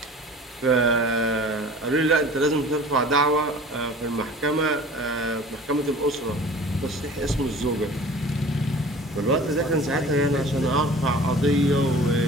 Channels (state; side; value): normal; both; correlation 0.43